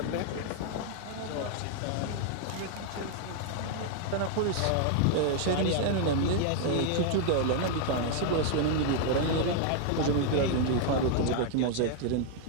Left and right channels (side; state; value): both; different; correlation 0.00